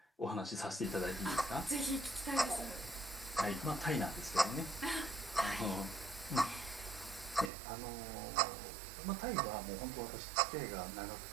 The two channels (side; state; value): left; drops out; at 7.5 s